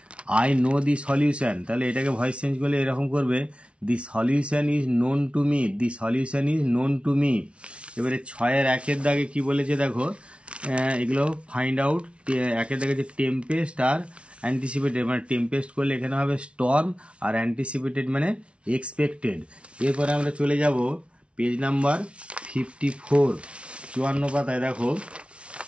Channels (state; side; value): late; left; 0.060 ms